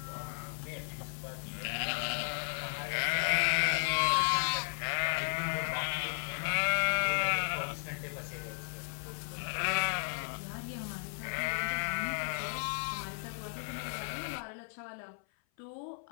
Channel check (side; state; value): right; silent; 55 dB below the other